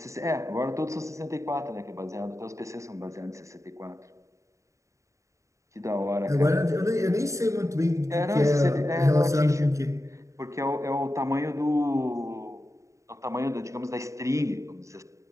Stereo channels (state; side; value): late; left; 0.15 ms